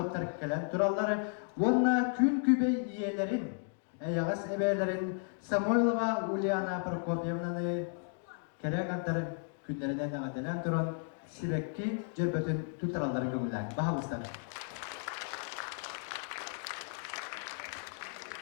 gelen duralları onunla kün kübey iyelerin Yağız ebelerin Samoylova Uliana Prokofyevna'nı Kereganların günlerinden nağatilen duran Sibekki Cerbötün tutaralları gömülen. Bahavuzlar.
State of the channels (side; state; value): right; silent; 55 dB below the other